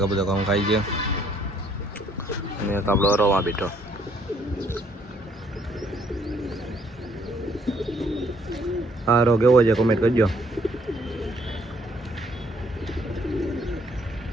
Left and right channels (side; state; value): both; normal; correlation 0.66